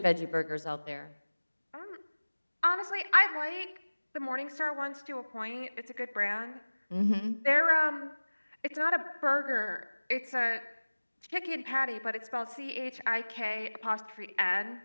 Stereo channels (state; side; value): inverted; both; correlation -1.00